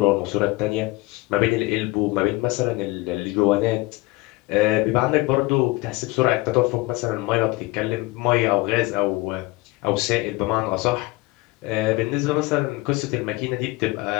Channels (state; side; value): quieter; right; 21.4 dB